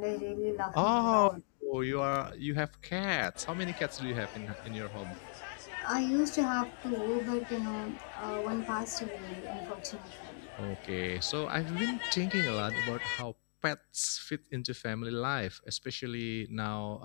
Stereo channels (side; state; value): right; silent; digital silence